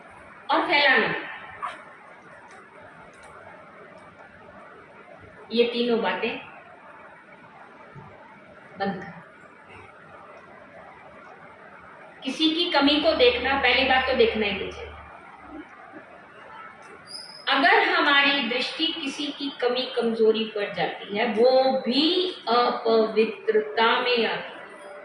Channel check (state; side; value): identical; both; correlation 1.00